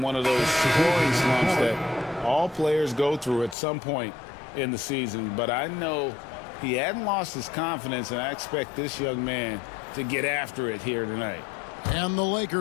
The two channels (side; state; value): right; drops out; at 3.6 s